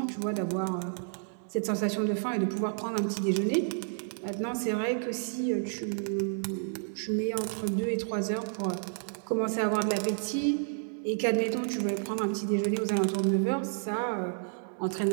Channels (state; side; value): silent; left; 57 dB below the other